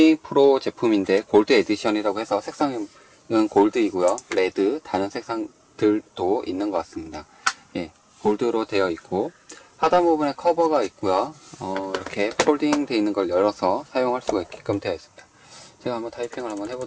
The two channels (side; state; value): both; identical; correlation 1.00